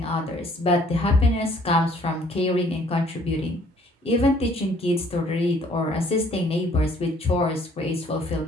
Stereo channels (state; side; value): normal; both; correlation 0.60